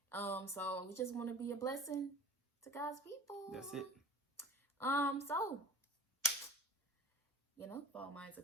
So we just want to be a blessing to God's people. That's it. So, if all minds are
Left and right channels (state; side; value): normal; both; correlation 0.43